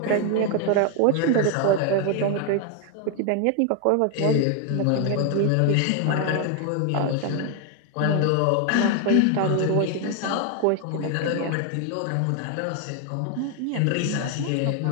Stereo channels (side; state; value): both; different; correlation 0.01